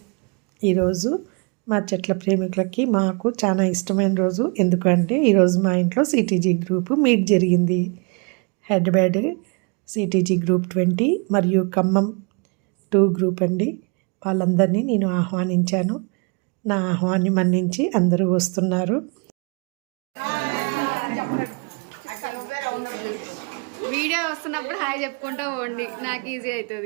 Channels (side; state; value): left; quieter; 33.7 dB